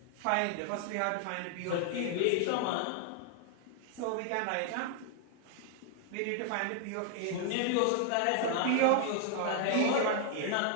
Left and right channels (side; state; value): both; different; correlation 0.00